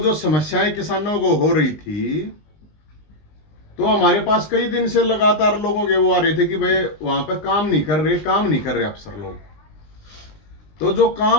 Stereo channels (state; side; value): late; right; 20 ms